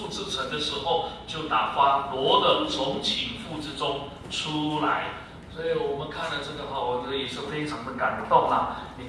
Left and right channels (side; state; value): both; identical; correlation 1.00